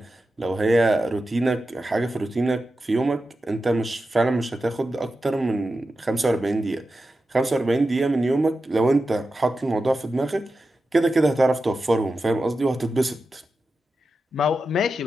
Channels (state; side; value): normal; both; correlation 0.91